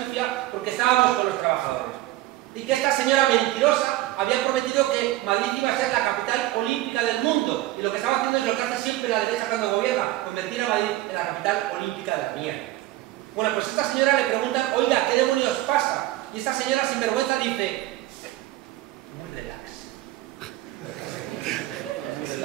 sucia porque estábamos con los trabajadores. Y que esta señora mentirosa había prometido que Madrid iba a ser la capital olímpica del mundo. Y lo que estaba haciendo es lo que hace siempre la derecha cuando gobierna, convertir a Madrid en la capital olímpica de la mierda. Bueno, pues a esta señora le preguntan, oiga, ¿qué demonios pasa? Y esta señora sin vergüenza dice, muy relax. Muy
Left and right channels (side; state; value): left; quieter; 16.4 dB